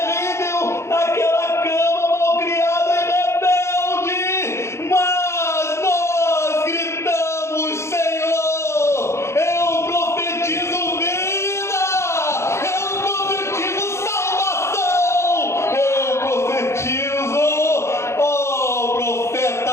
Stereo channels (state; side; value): late; right; 0.13 ms